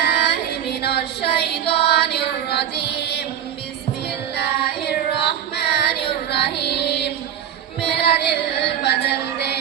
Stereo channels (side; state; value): left; quieter; 9.8 dB